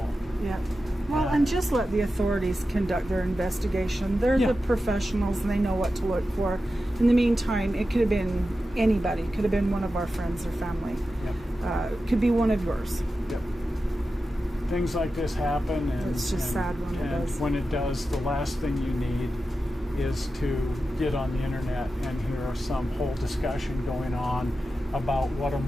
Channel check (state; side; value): normal; both; correlation 0.92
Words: Yeah. Well, and just let the authorities conduct their investigation. They're Yeah. the professionals and they know what to look for. In the meantime, it could have been anybody. It could have been one of our friends or family. Yep. It could be one of yours. Yep. Things like this happen, and It's just sad when it and does. when it does, the last thing you need is to get on the internet and hear some whole discussion going on about what a